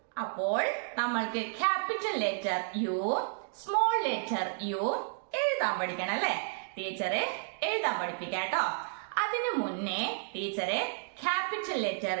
അപ്പോൾ നമ്മൾക്ക് capital letter U, small letter U എഴുതാൻ പഠിക്കണം, അല്ലെ? ടീച്ചറെ എഴുതാൻ പഠിപ്പിക്കാം കേട്ടോ. അതിനു മുന്നേ ടീച്ചറെ capital letter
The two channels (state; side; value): silent; left; digital silence